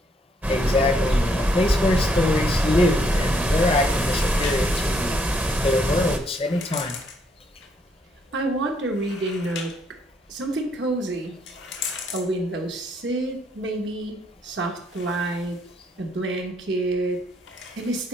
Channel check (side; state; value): both; normal; correlation 0.71